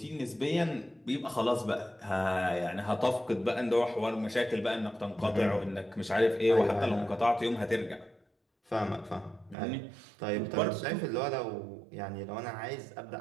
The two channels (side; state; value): left; drops out; at 9.6 s